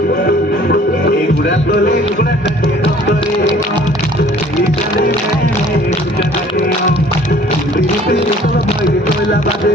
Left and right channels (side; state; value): both; normal; correlation 0.53